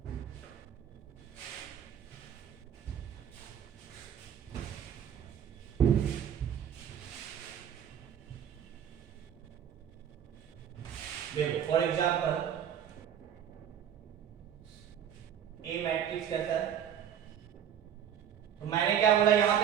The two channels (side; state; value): left; quieter; 9.1 dB